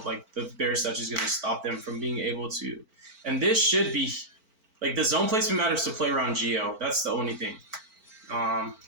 like the Bear Statue is going to stop them from being able to. And this should be, like, the zone placement matters to play around Geo. That's the only thing.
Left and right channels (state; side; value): late; left; 4.5 ms